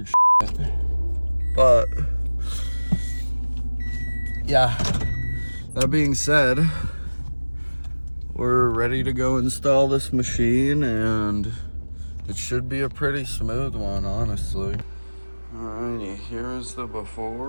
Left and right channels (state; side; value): inverted; both; correlation -1.00